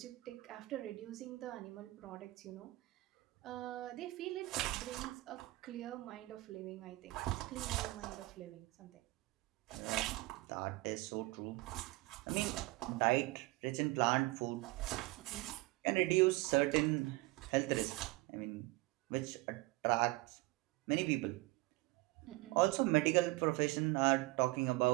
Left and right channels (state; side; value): quieter; left; 21.1 dB